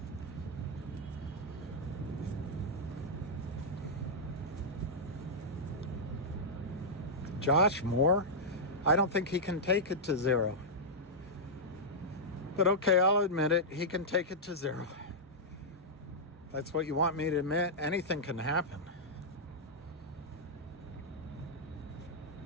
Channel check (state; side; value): normal; both; correlation -0.08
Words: Josh Moore? I don't think he can take it to 0. But okay, I'll admit it. He can take it to 0. That's what you want me to admit. Anything can happen.